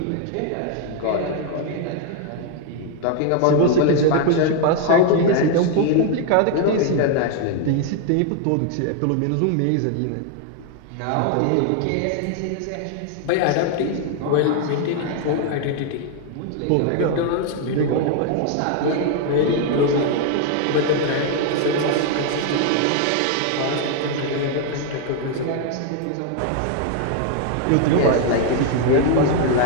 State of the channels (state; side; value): different; both; correlation 0.00